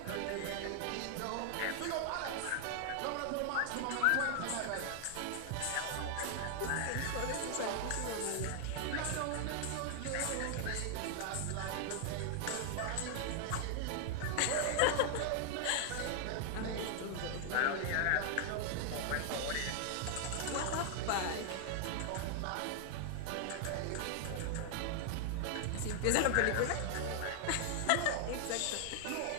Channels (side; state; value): both; different; correlation 0.00